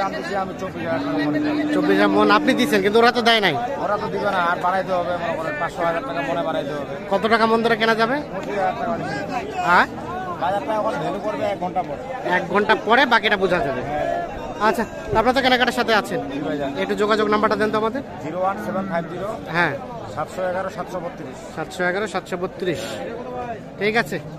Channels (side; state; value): both; identical; correlation 1.00